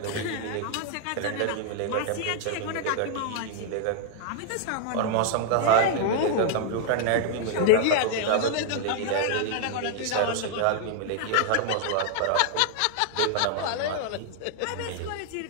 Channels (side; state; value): both; different; correlation -0.01